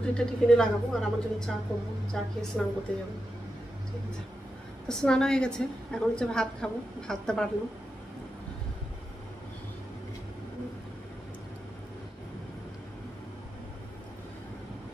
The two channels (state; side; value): normal; both; correlation 0.88